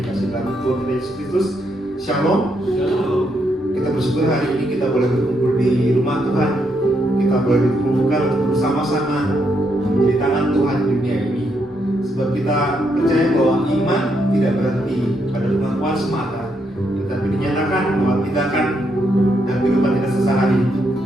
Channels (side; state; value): both; normal; correlation 0.78